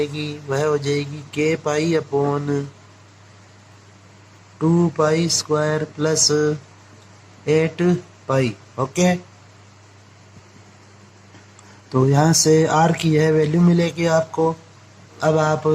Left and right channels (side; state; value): both; identical; correlation 1.00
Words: वह हो जाएगी k pi upon 2π² plus 8π। Okay, तो यहाँ से r की यह वैल्यू मिलेगी आपको। अब आप